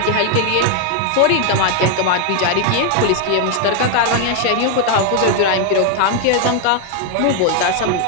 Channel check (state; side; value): different; both; correlation 0.00